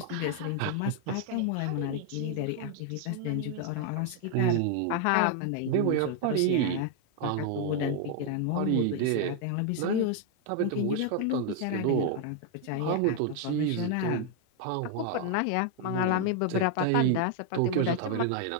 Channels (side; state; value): both; different; correlation 0.00